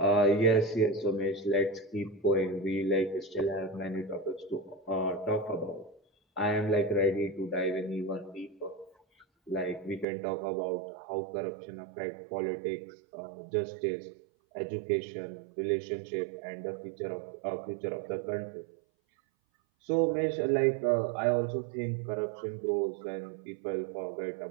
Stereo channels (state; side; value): drops out; left; at 10.1 s